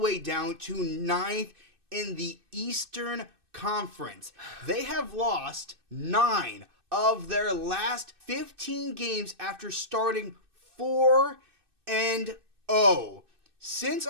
down to 9th in the Eastern Conference. They have lost 9 of their last 15 games after starting 4-0. Since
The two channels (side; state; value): left; late; 2.6 ms